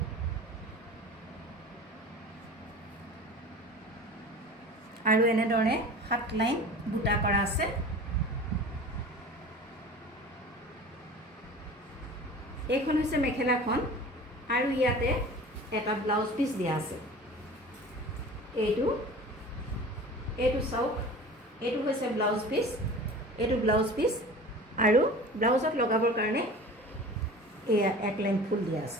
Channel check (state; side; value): normal; both; correlation 0.39